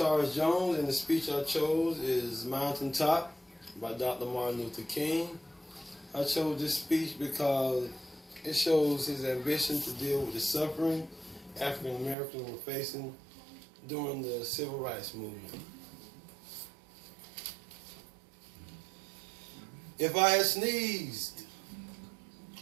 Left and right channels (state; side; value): drops out; left; at 12.2 s